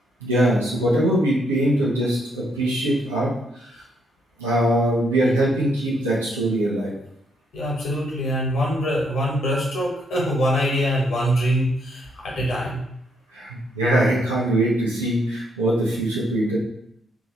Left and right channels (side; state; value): both; normal; correlation 0.73